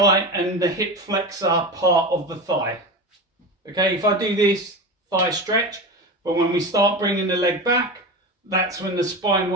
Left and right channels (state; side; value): normal; both; correlation 0.25